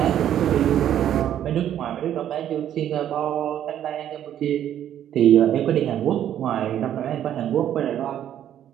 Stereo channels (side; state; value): left; quieter; 10.7 dB